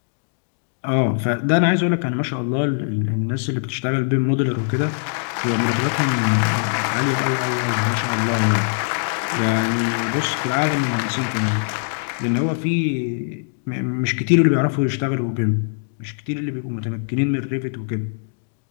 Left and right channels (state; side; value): silent; right; digital silence